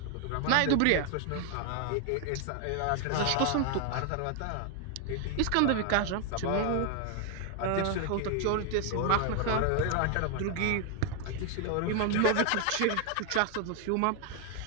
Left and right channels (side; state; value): both; different; correlation 0.01